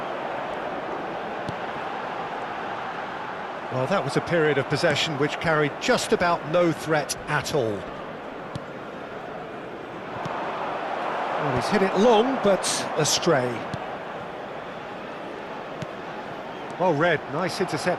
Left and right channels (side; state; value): both; identical; correlation 1.00